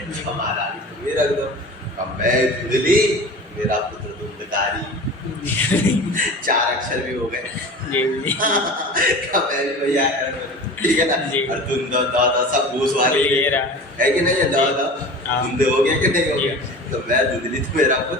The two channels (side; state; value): both; normal; correlation 0.36